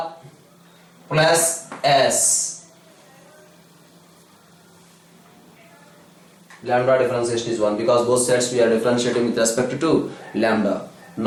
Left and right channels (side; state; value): both; identical; correlation 1.00